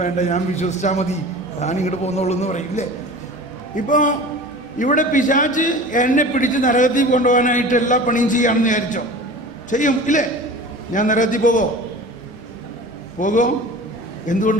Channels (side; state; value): both; normal; correlation 0.38